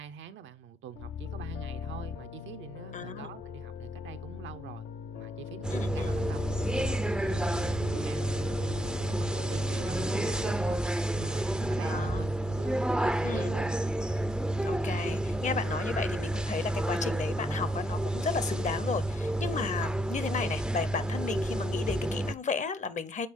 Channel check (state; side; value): normal; both; correlation 0.76